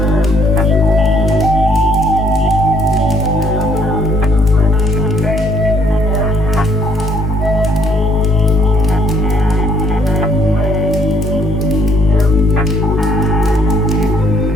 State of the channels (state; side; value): normal; both; correlation 0.65